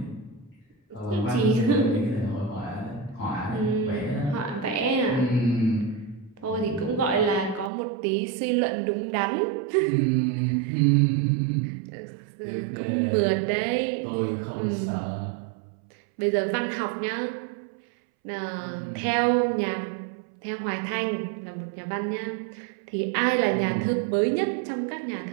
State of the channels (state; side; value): drops out; left; at 7.7 s